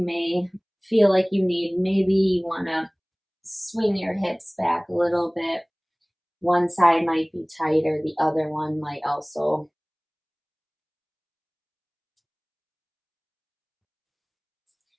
may feel like you need. Maybe you want to swing your hips back a little bit. One side might be tighter, the other one might also.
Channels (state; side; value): identical; both; correlation 1.00